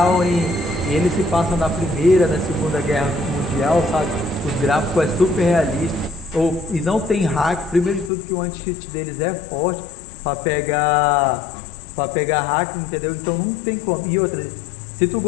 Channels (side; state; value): right; drops out; at 8.1 s